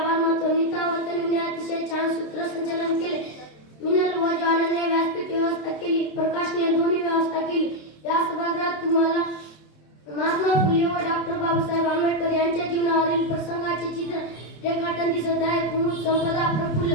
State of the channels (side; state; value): right; late; 27 ms